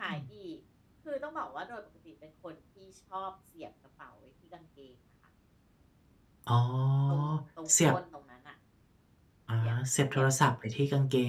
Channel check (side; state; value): both; identical; correlation 1.00